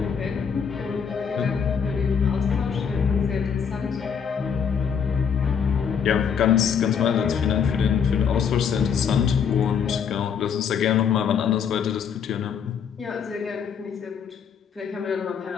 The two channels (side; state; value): right; quieter; 7.1 dB